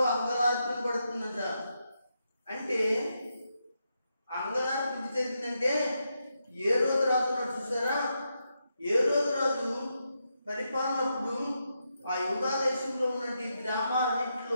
అంగలార్పణ పడుతుందంట. అంటే అంగలార్పణ ఎందుకు జరిగిందంటే ఏ రోజు రాజు ఉన్నాడు చూసారా? ఏ రోజు రాజు పరిపాలనప్పుడు ఆ యూదా దేశంలో ఉన్నటువంటి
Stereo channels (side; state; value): both; inverted; correlation -0.84